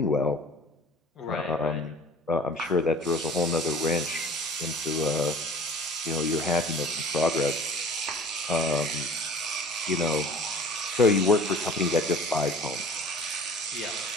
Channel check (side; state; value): both; normal; correlation 0.45